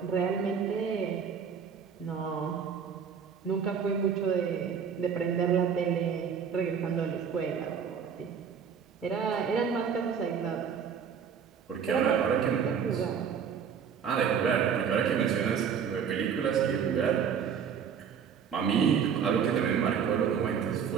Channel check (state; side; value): quieter; left; 7.2 dB